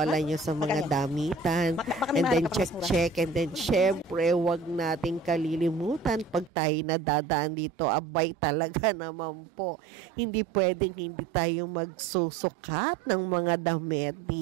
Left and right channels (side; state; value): left; drops out; at 6.5 s